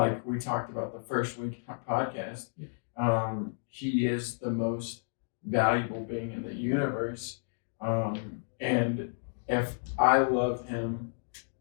talked about the first week podcast, he is the most valuable being in the universe, and if I love him,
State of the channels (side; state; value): right; silent; digital silence